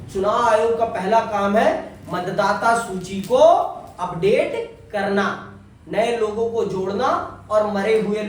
चुनाव आयोग का पहला काम है मतदाता सूची को अपडेट करना, नए लोगों को जोड़ना और मरे हुए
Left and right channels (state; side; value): identical; both; correlation 1.00